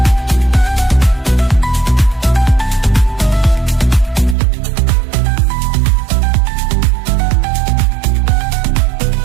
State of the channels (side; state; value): left; drops out; at 4.4 s